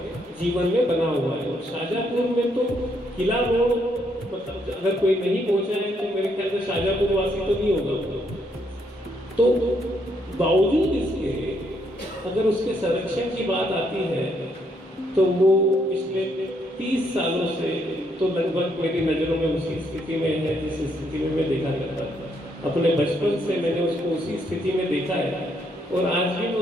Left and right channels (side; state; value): both; normal; correlation 0.73